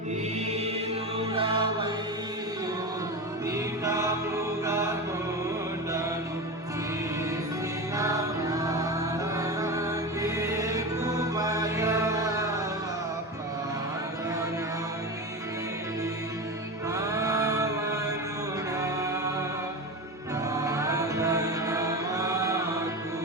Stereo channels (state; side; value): normal; both; correlation 0.23